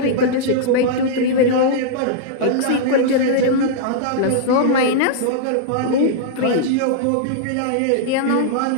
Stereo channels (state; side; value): different; both; correlation -0.02